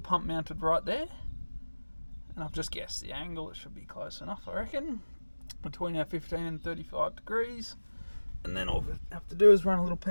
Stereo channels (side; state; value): both; inverted; correlation -1.00